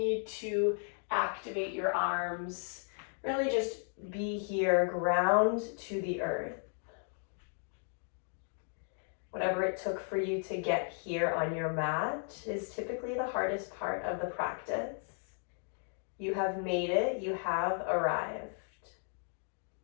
to activate your arms. Really just be here, ground to the earth. Whatever it took for you to get here on your mat is typically the hardest part of the practice. You have made it, you have arrived.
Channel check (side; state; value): right; silent; 54 dB below the other